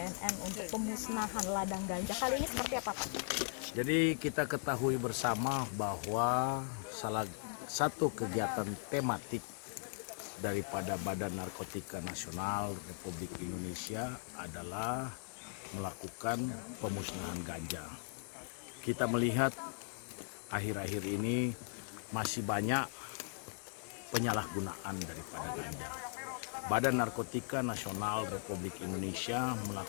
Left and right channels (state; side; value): silent; right; 52 dB below the other